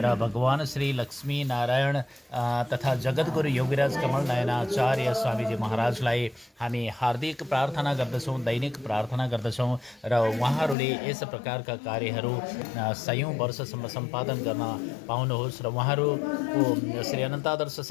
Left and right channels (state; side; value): drops out; right; at 10.8 s